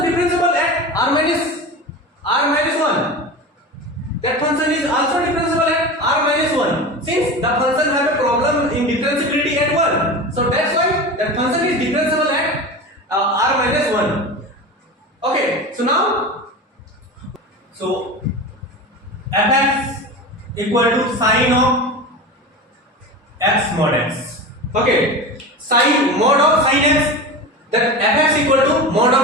at r minus 1. That function is also differentiable at r minus 1. Since the function have a problem in differentiability at 1, so that's why that function is differentiable at r minus 1. Okay, so now, so fx equal to sine of x mod x. Okay, sine mod of sine x, that fx equal to mod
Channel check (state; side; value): normal; both; correlation 0.28